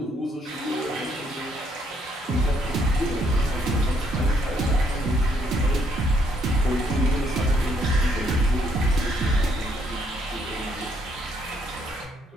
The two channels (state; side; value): normal; both; correlation 0.70